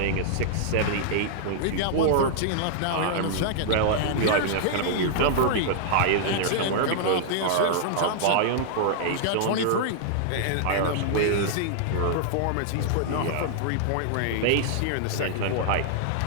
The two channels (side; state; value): both; different; correlation -0.01